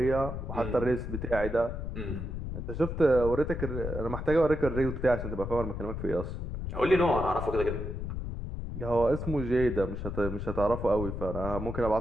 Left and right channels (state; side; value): noise; left; rumble, 5 dB below the sound